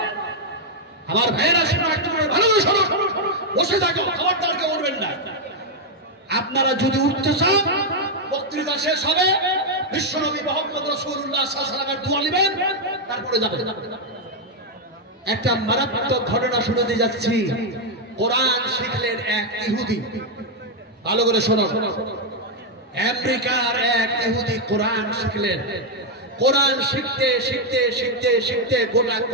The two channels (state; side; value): normal; both; correlation 0.01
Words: আমার ভাইয়েরা শোনো, একটু ভালো করে শোনো। বসে থাকো, খবরদার কেউ উঠবেন না। আপনারা যদি উঠতে চান বক্তৃতা শেষ হবে, বিশ্বনবী মুহাম্মদ রাসূলুল্লাহ সাল্লাল্লাহু আলাইহি ওয়াসাল্লামের দোয়া নেবেন, তারপরে যাবেন। একটা মারাত্মক ঘটনা শুনতে যাচ্ছি। কোরআন শিখলেন এক ইহুদি, ভালো করে শোনো। আমেরিকার এক ইহুদি কোরআন শিখলেন। কোরআন শিখতে শিখতে শিখতে শিখতে গোটা